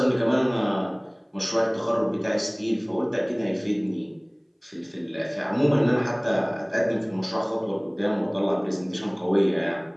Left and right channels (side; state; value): both; identical; correlation 1.00